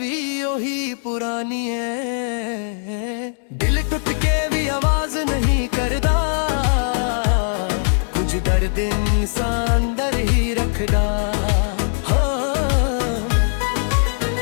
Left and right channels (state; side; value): silent; right; digital silence